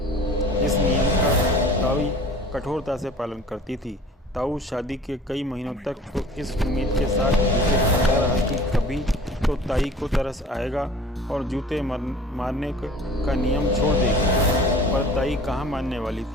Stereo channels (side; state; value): both; normal; correlation 0.46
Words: इस नियम का ताई कठोरता से पालन करती थी। ताऊ शादी के कई महीनों तक तो इस उम्मीद के साथ जूते खाता रहा कि कभी तो ताई को तरस आएगा और जूते मारने का नियम छोड़ देगी। पर ताई कहाँ मानने वाली